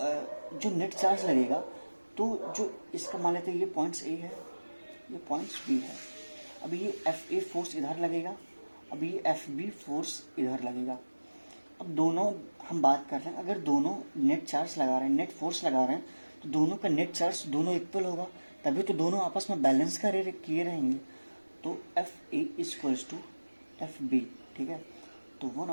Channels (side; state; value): both; inverted; correlation -1.00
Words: नेट चार्ज लगेगा, तो जो इसका मान लेते हैं ये पॉइंट्स A है, ये पॉइंट्स B है। अब ये FA फोर्स इधर लगेगा, अब ये FB फोर्स इधर लगेगा। अब दोनों हम बात कर रहे हैं, अगर दोनों नेट चार्ज लगा रहे हैं, नेट फोर्स लगा रहे हैं, तो दोनों का नेट चार्ज दोनों इक्वल होगा, तभी तो दोनों आपस में बैलेंस किए रहेंगे। तो FA इक्वल्स टू FB, ठीक है। तो